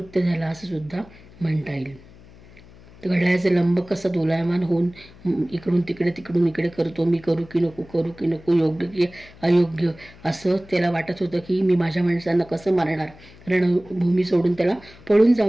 झाला असं सुद्धा म्हणता येईल. घड्याळाचे लंब कसा दोलायमान होऊन इकडून तिकडे तिकडून इकडे करतो, मी करू की नको, योग्य की अयोग्य असं त्याला वाटत होतं की मी माझ्या माणसांना कसं मारणार, रणभूमी सोडून त्याला पळून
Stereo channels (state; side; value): noise; left; hum, 23 dB below the sound